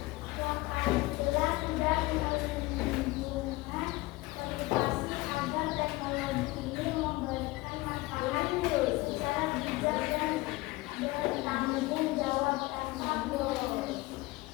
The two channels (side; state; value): right; quieter; 20.7 dB